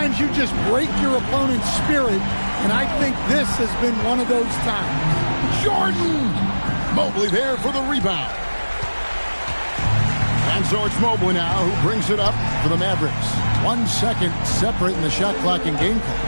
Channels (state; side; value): inverted; both; correlation -1.00